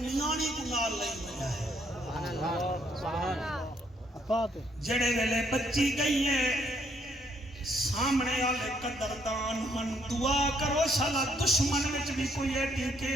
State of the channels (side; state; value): both; normal; correlation 0.70